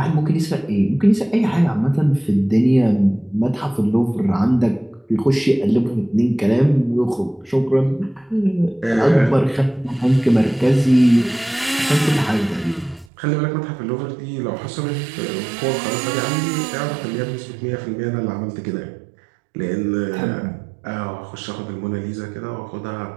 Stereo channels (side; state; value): left; drops out; at 13.1 s